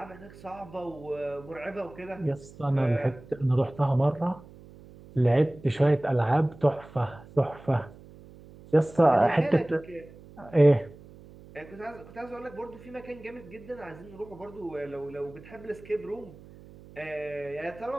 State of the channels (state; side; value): noise; right; hum, 20 dB below the sound